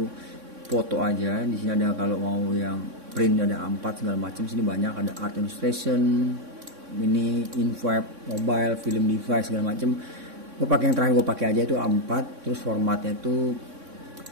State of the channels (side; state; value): left; late; 3.6 ms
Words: foto aja. Di sini ada kalau mau yang print ada A4 segala macam. Sini banyak, ada art illustration, ini info mobile, film device segala macam. Gue pakai yang terakhir gue pakai aja itu A4. Terus formatnya itu